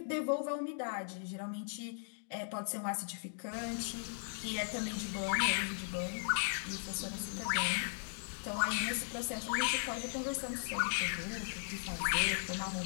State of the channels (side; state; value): right; silent; digital silence